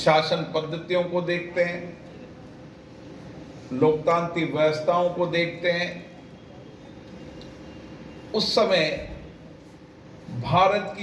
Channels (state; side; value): identical; both; correlation 1.00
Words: पद्धतियों को देखते हैं, लोकतांत्रिक व्यवस्थाओं को देखते हैं, उस समय भारत